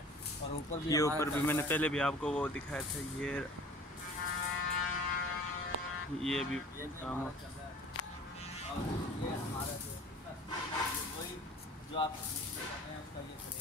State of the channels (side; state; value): both; normal; correlation 0.46